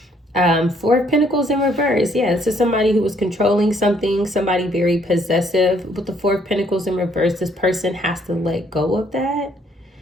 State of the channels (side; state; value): both; normal; correlation 0.66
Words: Four of Pentacles in reverse. Yeah, this is somebody who was controlling something, somebody very possessive. With the Four of Pentacles in reverse, this person has to let go of that,